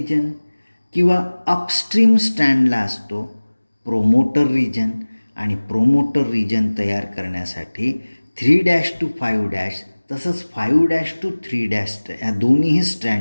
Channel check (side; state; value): both; inverted; correlation -1.00